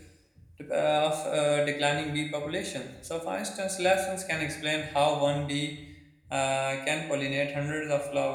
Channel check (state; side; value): identical; both; correlation 1.00